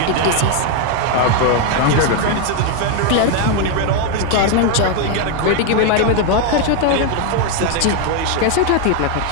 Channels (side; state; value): both; different; correlation 0.01